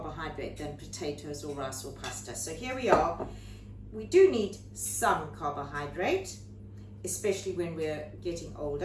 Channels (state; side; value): identical; both; correlation 1.00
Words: than potatoes or rice or pasta. So here we are. We do need some carbohydrate, especially when we're getting